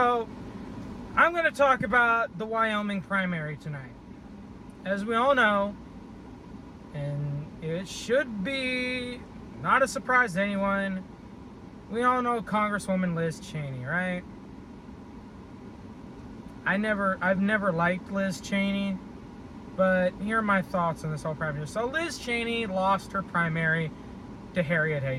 I'm going to talk about the Wyoming primary tonight. As we all know, and it should be not a surprise to anyone, we all know Congresswoman Liz Cheney, right? I've never liked Liz Cheney, but here are my thoughts on this whole primary. So Liz Cheney lost her primary to Harriet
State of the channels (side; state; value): both; identical; correlation 1.00